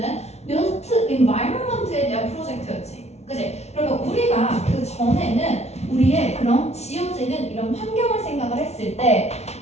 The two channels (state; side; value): late; right; 0.31 ms